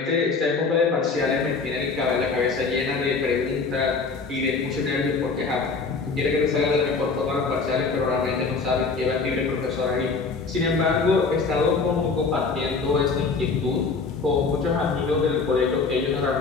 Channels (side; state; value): right; quieter; 4.5 dB